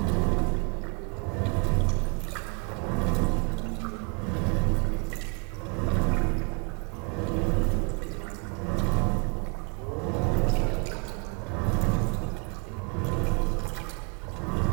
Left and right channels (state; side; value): quieter; left; 32.4 dB